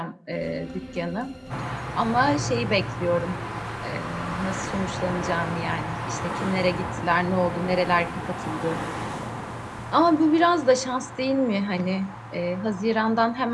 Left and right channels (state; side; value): identical; both; correlation 1.00